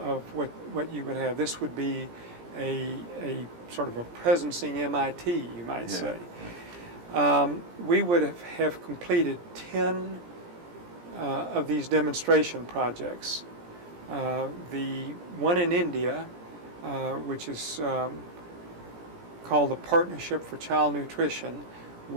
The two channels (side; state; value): left; late; 17 ms